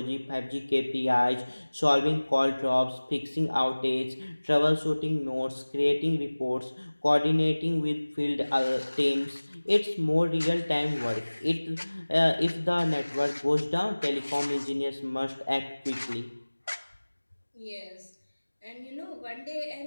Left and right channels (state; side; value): inverted; both; correlation -1.00